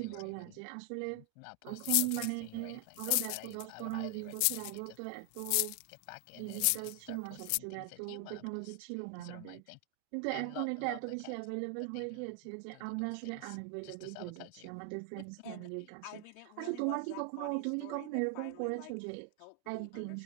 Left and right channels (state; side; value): different; both; correlation 0.00